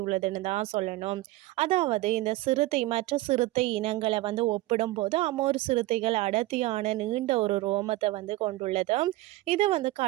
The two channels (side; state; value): left; quieter; 18.4 dB